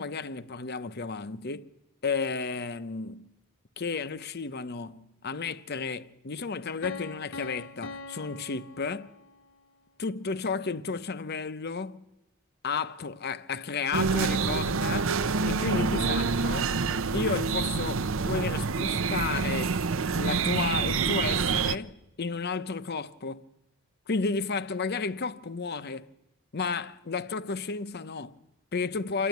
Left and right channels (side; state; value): both; normal; correlation 0.14